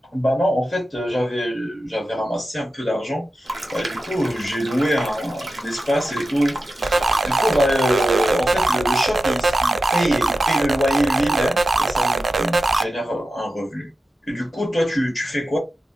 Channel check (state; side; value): normal; both; correlation 0.92